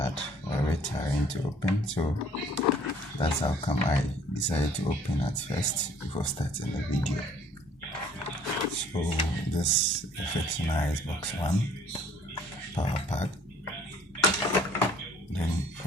or a bit tiring to open, so that's how come I decided to open at first before starting the video. So this is fixing our Xbox One power pack. Then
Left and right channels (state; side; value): normal; both; correlation 0.57